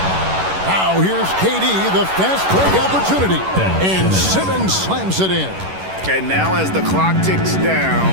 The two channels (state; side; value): late; left; 11 ms